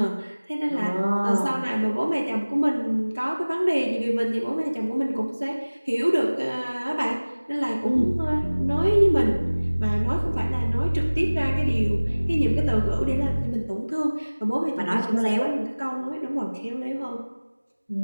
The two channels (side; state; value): both; inverted; correlation -1.00